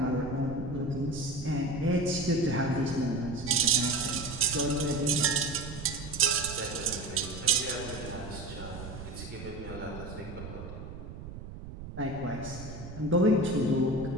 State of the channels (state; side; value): noise; right; rumble, 11 dB below the sound